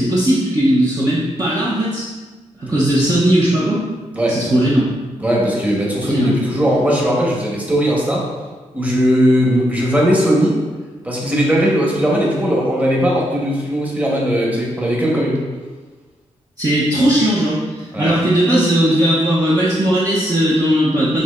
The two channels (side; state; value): both; normal; correlation 0.79